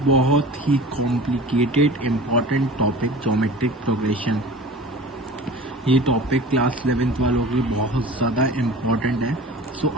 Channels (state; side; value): normal; both; correlation 0.39